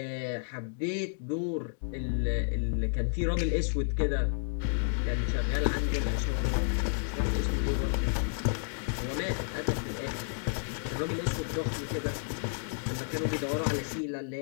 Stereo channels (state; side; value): silent; right; digital silence